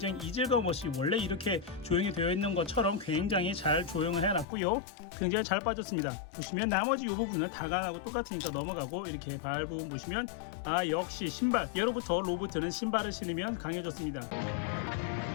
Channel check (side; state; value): right; drops out; at 4.5 s